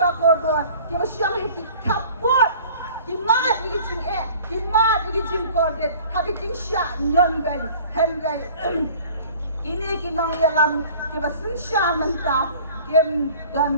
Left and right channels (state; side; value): inverted; both; correlation -0.48